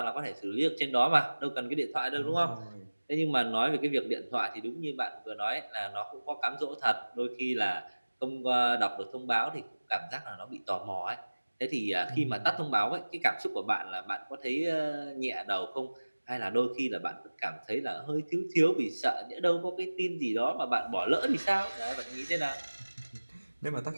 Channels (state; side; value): inverted; both; correlation -1.00